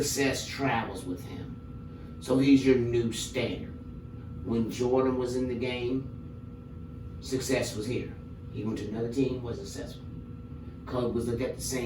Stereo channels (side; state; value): both; identical; correlation 1.00